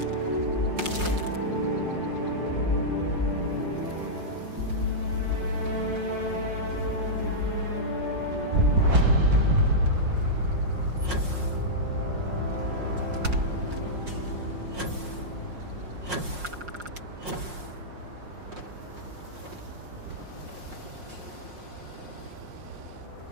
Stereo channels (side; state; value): left; late; 5.6 ms